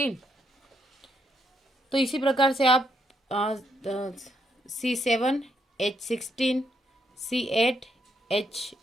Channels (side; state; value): both; normal; correlation 0.76